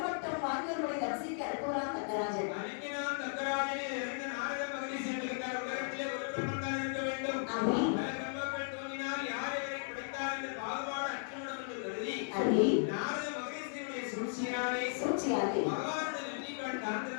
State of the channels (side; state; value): right; silent; digital silence